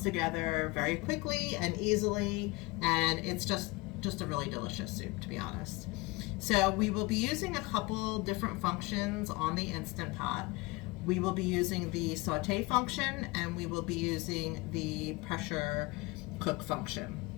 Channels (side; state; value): right; quieter; 23.4 dB